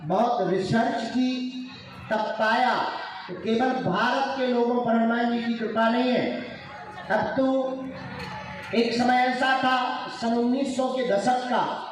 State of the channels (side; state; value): both; identical; correlation 1.00